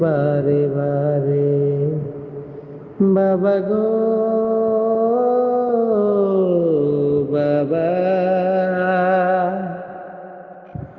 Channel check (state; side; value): identical; both; correlation 1.00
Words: বারে বারে। বাবা গো বাবা,